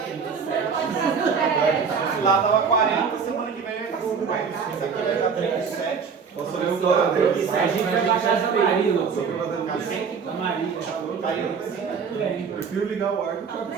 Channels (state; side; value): quieter; left; 6.0 dB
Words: 37. Lá tava 40, semana que vem vai estar 50. Esse aqui vai estar 37. A gente vai baixar essa Maria, doutor. A Maria. Caiu. Prefiro ligar o ar do que o